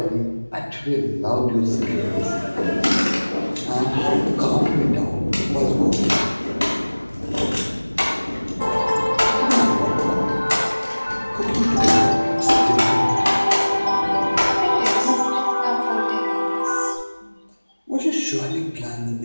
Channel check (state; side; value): inverted; both; correlation -1.00